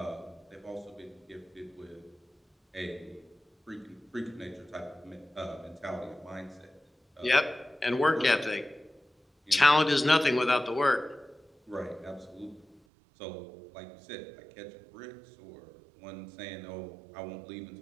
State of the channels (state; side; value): drops out; left; at 12.8 s